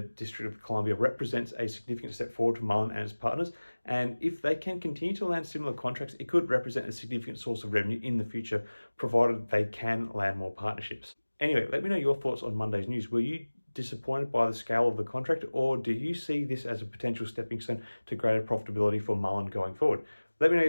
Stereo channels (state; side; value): inverted; both; correlation -1.00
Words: District of Columbia represents a significant step forward for Mullen and its partners, and if they can continue to land similar contracts, it could represent a significant source of revenue in the future, provided they can land more partnerships. Anyway, let me know your thoughts on Monday's news. Were you disappointed by the scale of the contract, or do you see this as a potential stepping stone to greater profitability for Mullen going forward? Let me know